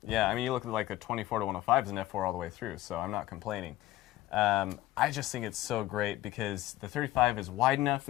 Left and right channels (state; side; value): quieter; right; 15.6 dB